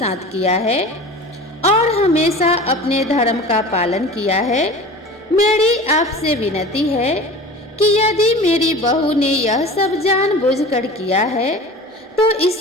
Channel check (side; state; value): both; normal; correlation 0.37